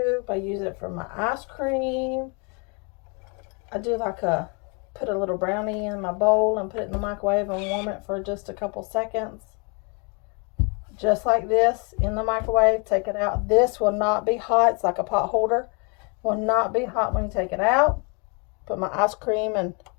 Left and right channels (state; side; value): quieter; right; 34.4 dB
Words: I use it for my ice cream. I do like put a little brownie in my bowl and put it in the microwave and warm it for just a couple seconds. Just like this, in the microwave, take it out. This will not be hot. It's like a pot holder. Will not be hot when you take it out. Put my ice cream and